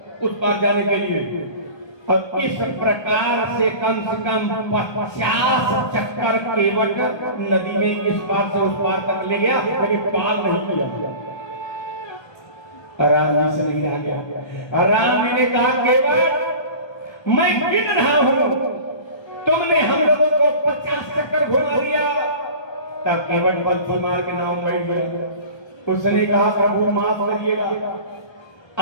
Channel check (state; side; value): late; right; 1.3 ms